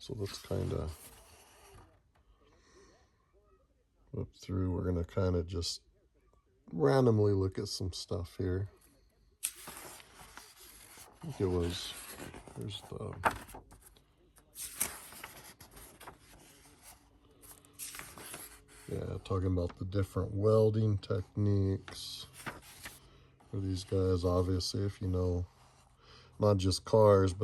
let's kind of flip through. We're going to kind of just randomly look at some stuff here. I think it was, there's the, talking about the different welding techniques for these guys. Obviously, if you know, not just cars,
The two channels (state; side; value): identical; both; correlation 1.00